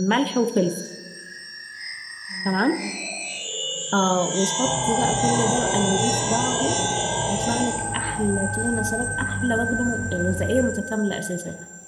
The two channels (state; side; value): identical; both; correlation 1.00